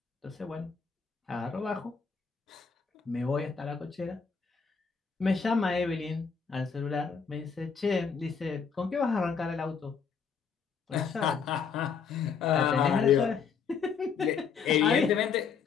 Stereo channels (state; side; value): quieter; right; 6.1 dB